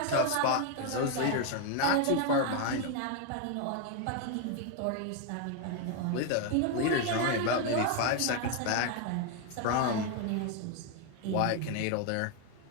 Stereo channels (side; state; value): both; different; correlation 0.01